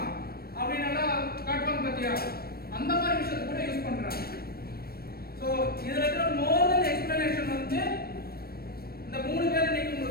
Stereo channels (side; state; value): right; late; 0.44 ms